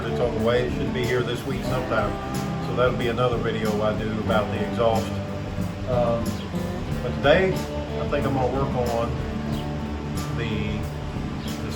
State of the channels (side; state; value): both; identical; correlation 1.00